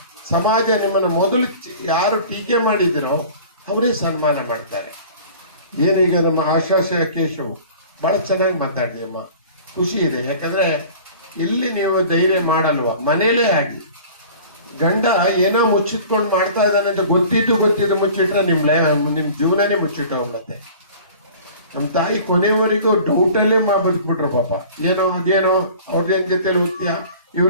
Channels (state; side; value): inverted; both; correlation -0.44